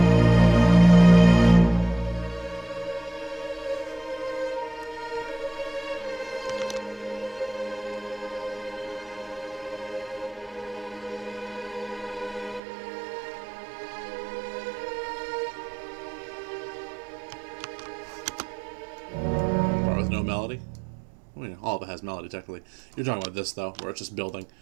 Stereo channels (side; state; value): left; drops out; at 12.6 s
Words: Melody. I mean, all of it has melody technically. You're talking about this though, where it's just building.